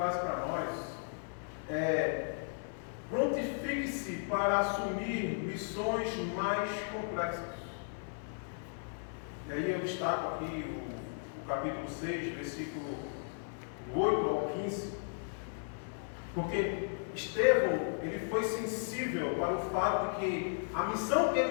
para nós é: prontifique-se para assumir missões mais complexas. E aí eu destaco aqui o capítulo 6, versículo 8 ao 15, porque Estevão, ele foi sensível para o fato de que a missão que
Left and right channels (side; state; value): right; silent; 54 dB below the other